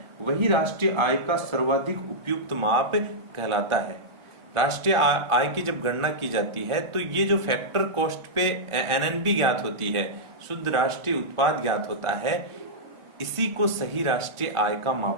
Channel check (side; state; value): left; late; 1.4 ms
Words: वही राष्ट्रीय आय का सर्वाधिक उपयुक्त माप कहलाता है। राष्ट्रीय आय की जब गणना की जाती है तो ये जो फैक्टर कॉस्ट पे एनएनपी ज्ञात होती है, शुद्ध राष्ट्रीय उत्पाद ज्ञात होता है, इसी को सही राष्ट्रीय आय का